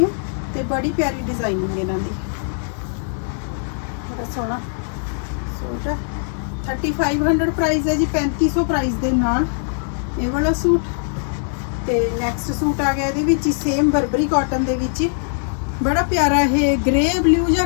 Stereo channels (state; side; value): silent; right; digital silence